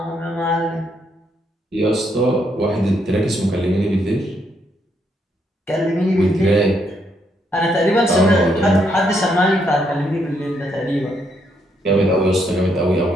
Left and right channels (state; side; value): normal; both; correlation 0.75